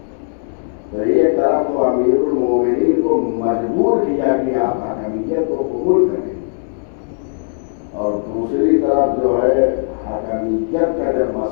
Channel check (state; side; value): silent; right; digital silence